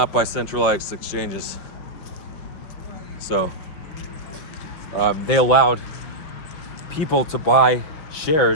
by centralized exchanges. So they allowed people to buy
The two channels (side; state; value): right; late; 5.6 ms